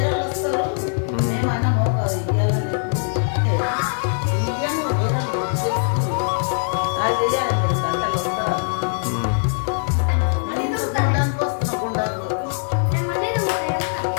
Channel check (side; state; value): right; silent; digital silence